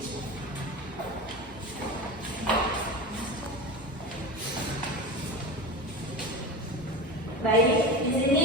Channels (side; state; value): both; normal; correlation 0.26